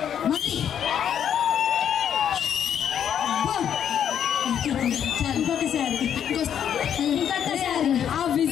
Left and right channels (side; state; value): right; quieter; 9.1 dB